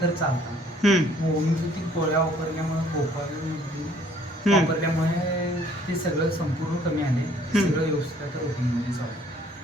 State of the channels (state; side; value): normal; both; correlation 0.59